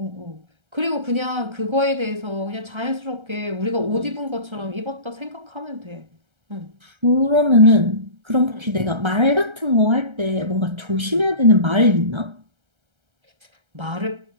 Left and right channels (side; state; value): left; late; 1.3 ms